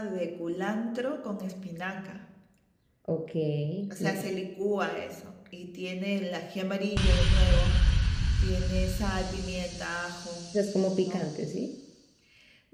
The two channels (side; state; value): both; identical; correlation 1.00